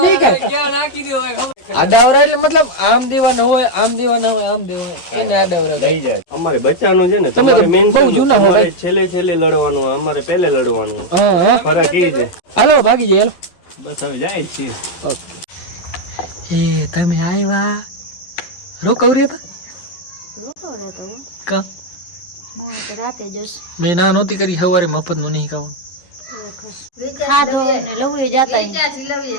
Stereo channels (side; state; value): right; late; 11 ms